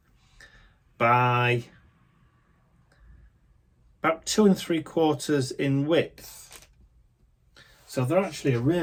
by about 2 3/4 in width. So they're actually a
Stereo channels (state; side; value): identical; both; correlation 1.00